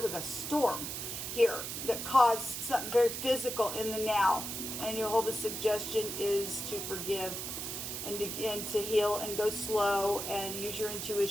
was a storm here that caused something very physical in the now. And Jehovah's suggestion is to forgive and to heal and go slow and use your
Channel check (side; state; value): right; noise; hiss, 5 dB below the sound